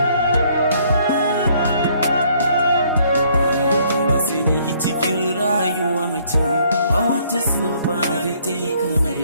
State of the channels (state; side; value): inverted; both; correlation -0.65